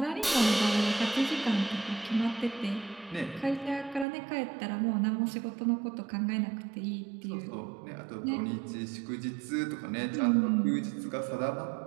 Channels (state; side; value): drops out; left; at 4.0 s